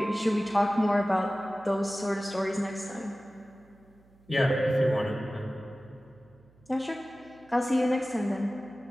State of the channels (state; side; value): noise; right; hum, 29 dB below the sound